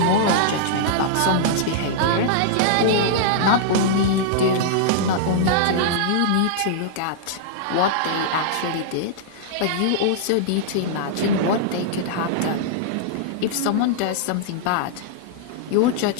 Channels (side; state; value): both; different; correlation -0.02